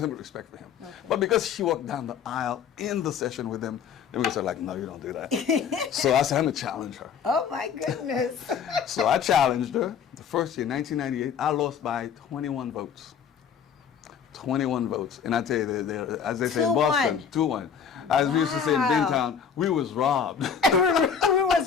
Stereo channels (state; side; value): quieter; right; 7.3 dB